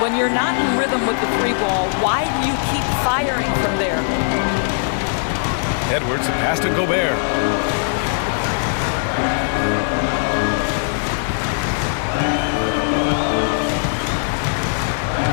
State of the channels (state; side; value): silent; right; 66 dB below the other